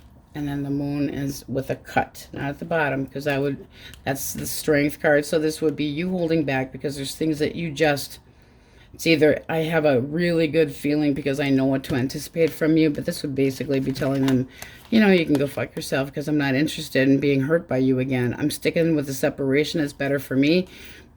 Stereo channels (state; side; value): identical; both; correlation 1.00